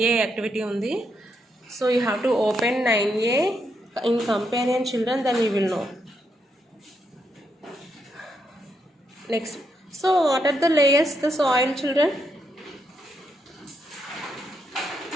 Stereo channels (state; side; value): normal; both; correlation 0.79